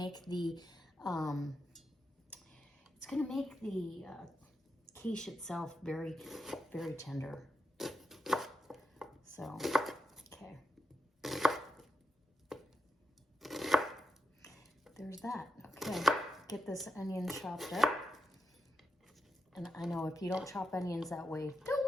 the quiche itself very, very tender. So, okay. There's that. Okay, get this onion chopped up. And I know if you don't chop onions that way, don't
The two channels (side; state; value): both; normal; correlation 0.86